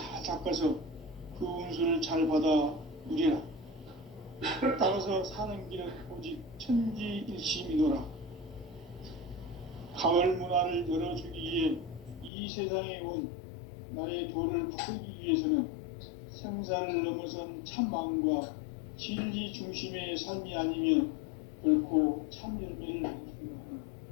닦아서 그 운수를 잘 받아 누리라. 따라서 사는 길은 오직 천지일심이노라. 가을 문화를 열어주기 위해 이 세상에 온 나의 도를 받들기 위해서는 생사를 넘어선 참 마음과 진리 중심의 삶이 아니면 결코 참 열매를 낼 수 없는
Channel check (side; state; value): right; drops out; at 12.3 s